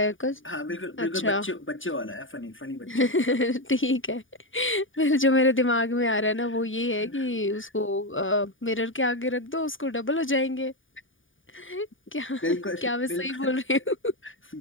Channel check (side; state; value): right; late; 0.57 ms